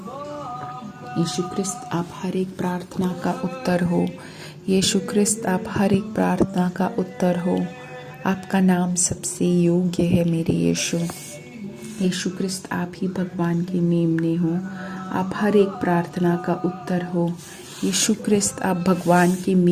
यीशु ख्रिस्त, आप हर एक प्रार्थना का उत्तर हो। यीशु ख्रिस्त, आप हर एक प्रार्थना का उत्तर हो। आपका नाम सबसे योग्य है मेरे यीशु। यीशु ख्रिस्त, आप ही भगवान के मेमने हो। आप हर एक प्रार्थना का उत्तर हो। यीशु ख्रिस्त, आप भगवान के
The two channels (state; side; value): identical; both; correlation 1.00